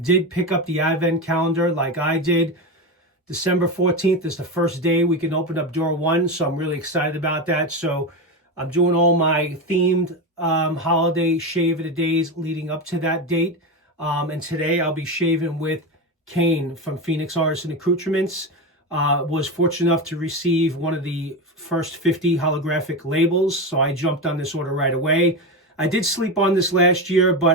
did pick up the Advent calendar like I did, December 14th is the first day we can open up door one, so I'm really excited about that. So I'm doing all my themed holiday Shave of the Days leading up to that date. And today I'll be shaving with Kane from Phoenix Artisan Accoutrements. Was fortunate enough to receive one of the first 50 holographic labels, so I jumped on this order right away. I did sleep on this last year,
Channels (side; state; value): both; normal; correlation 0.18